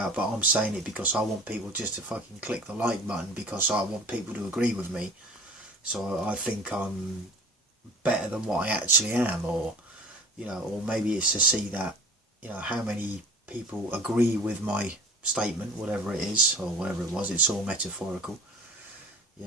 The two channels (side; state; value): both; normal; correlation 0.42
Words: but I'm saying it because I want people just to fucking click the like button because I want people to agree with me, so I think I'm better than what I actually am, or or maybe it's to see that how many people agree with my statement, whatever it is or whatever it was. It's all metaphorical,